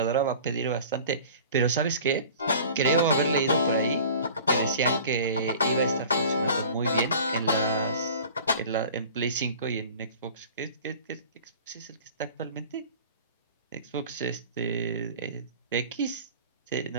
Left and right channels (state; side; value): inverted; both; correlation -0.42